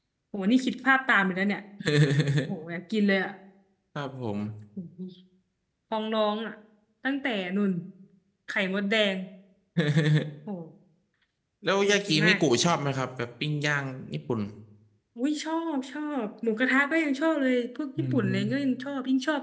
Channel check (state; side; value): identical; both; correlation 1.00